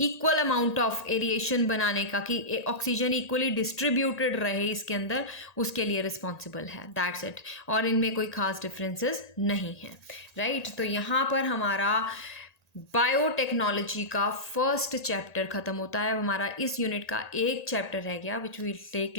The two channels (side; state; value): right; late; 1.8 ms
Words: अमाउंट ऑफ एरिएशन बनाने का, कि ऑक्सीजन इक्वली डिस्ट्रीब्यूटेड रहे इसके अंदर, उसके लिए रिस्पॉन्सिबल है। That's it. और इनमें कोई खास डिफरेंसेस नहीं है, राइट। तो यहाँ पर हमारा बायोटेक्नोलॉजी का फर्स्ट चैप्टर ख़त्म होता है। हमारा इस यूनिट का एक चैप्टर रह गया which will take